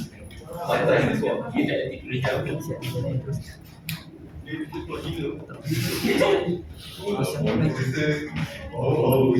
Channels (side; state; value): both; identical; correlation 1.00